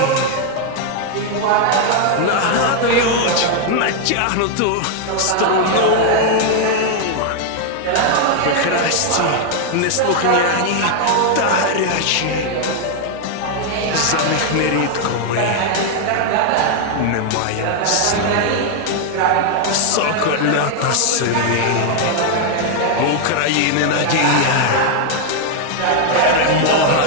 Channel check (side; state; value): both; different; correlation 0.00